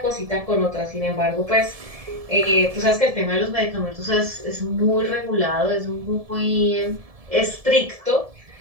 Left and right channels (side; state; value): left; late; 1.7 ms